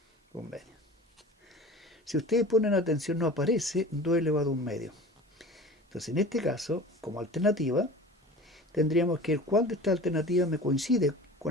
Un medio. Si ustedes ponen atención, no aparece 2 elevado a un medio. Entonces, en este caso, como alternativa, tendríamos que el cuál de estas alternativas me coincide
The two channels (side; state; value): both; normal; correlation 0.38